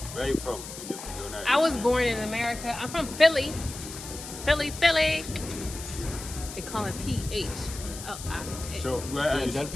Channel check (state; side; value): noise; left; hiss, 11 dB below the sound